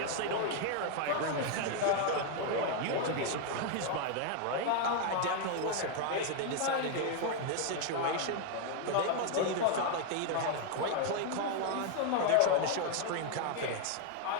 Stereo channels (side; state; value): both; different; correlation 0.00